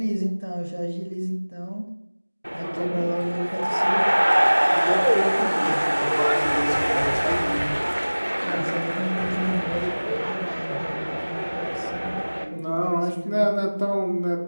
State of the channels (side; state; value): both; inverted; correlation -1.00